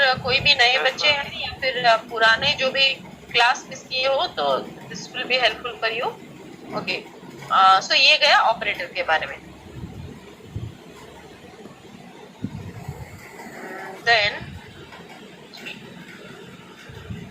कोई भी नए बच्चे हैं या फिर पुराने जो भी क्लास मिस किए हो तो this will be helpful for you. Okay. So ये गया ऑपरेटर के बारे में. देन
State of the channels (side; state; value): both; identical; correlation 1.00